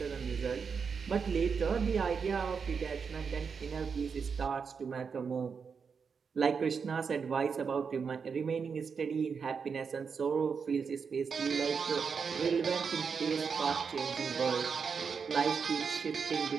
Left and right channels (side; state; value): left; quieter; 5.9 dB